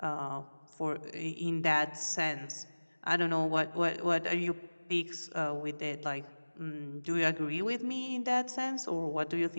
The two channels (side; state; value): both; inverted; correlation -1.00